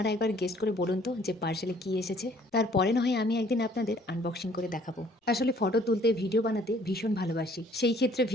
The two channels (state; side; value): normal; both; correlation 0.59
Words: একবার গেস্ট করে বলুন তো যে পার্সেলে কি এসেছে। তারপরে না হয় আমি একদিন আপনাদের আনবক্সিং করে দেখাবো। আসলে ফটো তুলতে, ভিডিও বানাতে ভীষণ ভালোবাসি। সেই ক্ষেত্রে